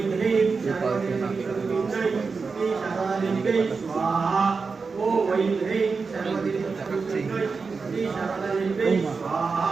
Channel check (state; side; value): quieter; left; 4.7 dB